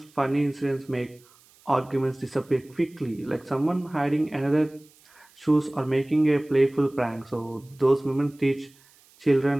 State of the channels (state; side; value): noise; right; hiss, 29 dB below the sound